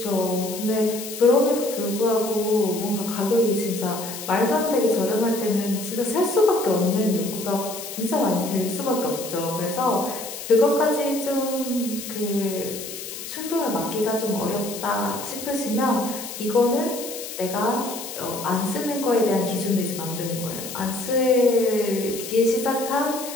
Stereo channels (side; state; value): left; noise; hiss, 9 dB below the sound